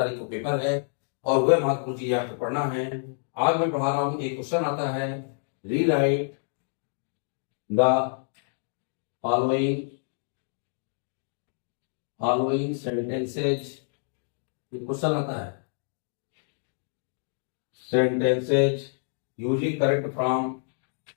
को पेपर है और वह महत्वपूर्ण चीजें आपको पढ़ना है। आज मैं पढ़ा रहा हूँ, एक क्वेश्चन आता है, rewrite the following following sentences. Question आता है sentences using correct from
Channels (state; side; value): silent; right; digital silence